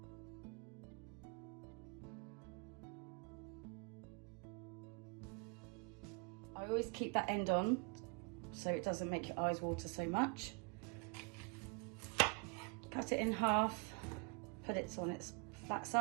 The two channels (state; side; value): quieter; left; 34.9 dB